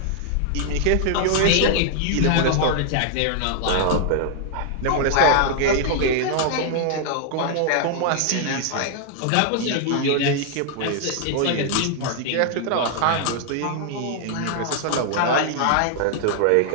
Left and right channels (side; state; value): both; different; correlation 0.00